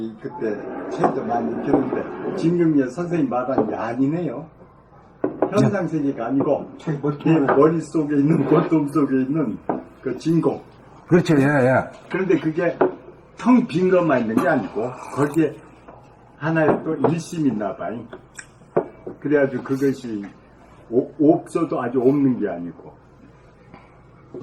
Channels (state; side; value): identical; both; correlation 1.00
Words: 그때 책도 많이 읽혔는데 진공이 선생님 말한 게 아니네요. 현상세계가 아니고 내 머릿속에 있는 골동 속에 있는 그 진공. 그렇죠. 예. 그런데 그게 텅 빈 것만 있는 게 아니고 거기에 하나의 또 일심이 있나 봐요. 그래가지고 그것이 없어도 아주 없는 게 아니고.